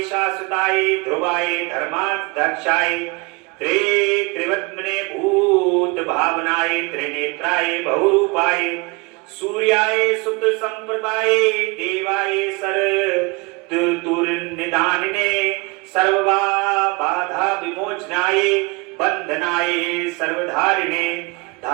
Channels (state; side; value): quieter; left; 27.0 dB